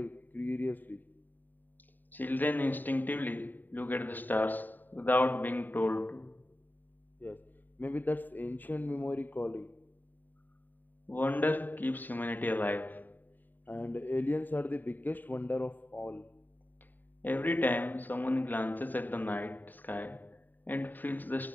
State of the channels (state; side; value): late; right; 0.089 ms